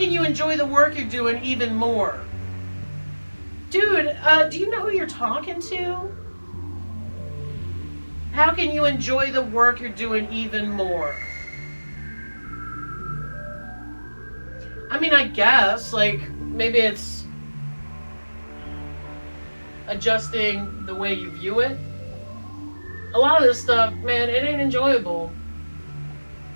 you enjoy the work you're doing even more? Dude, do you know who you're talking to? How can you enjoy the work you're doing even more? I mean, I guess, like, maybe it's adjusting the way you view it. A lot of this stuff, man, it ain't enjoyable.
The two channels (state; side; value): inverted; both; correlation -1.00